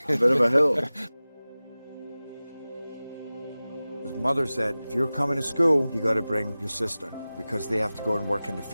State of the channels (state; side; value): inverted; both; correlation -0.97